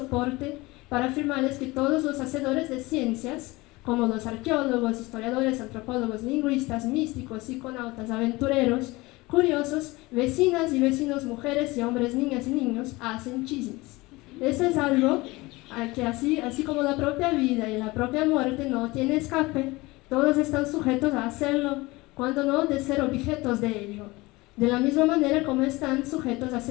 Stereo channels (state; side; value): quieter; right; 21.8 dB